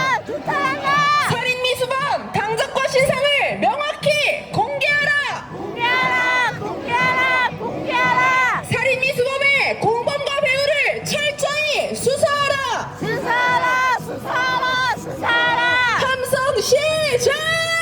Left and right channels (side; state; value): both; identical; correlation 1.00